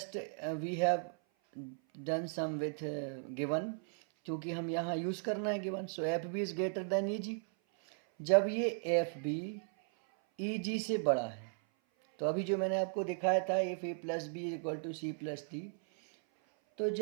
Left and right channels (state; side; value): silent; left; 54 dB below the other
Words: we have done some with given, क्योंकि हम यहाँ यूज़ करना है given. So FB is greater than EG। जब ये FB EG से बड़ा है, तो अभी जो मैंने आपको दिखाया था if A plus B is equal to C plus D, तो